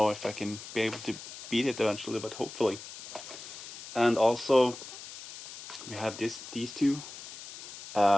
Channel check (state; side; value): noise; left; hiss, 13 dB below the sound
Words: if I can be able to beat it eventually, but hopefully. And also we have these two,